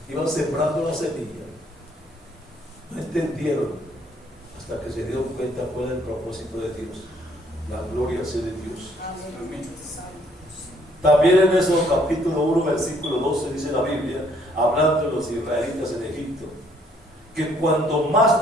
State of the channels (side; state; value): both; normal; correlation 0.65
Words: Iban sembrando la semilla. No entendieron hasta que se dieron cuenta cuál era el propósito de Dios. La gloria sea de Dios. Amén. También en ese capítulo 1, versículo 12, dice la Biblia, hablando de los israelitas en Egipto, que cuando